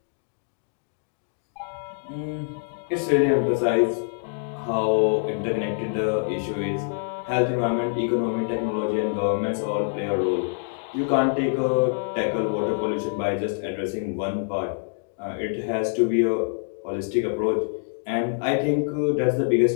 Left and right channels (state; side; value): silent; right; digital silence